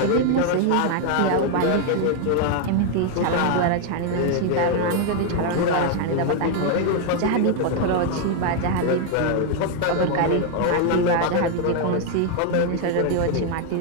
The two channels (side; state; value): both; different; correlation 0.00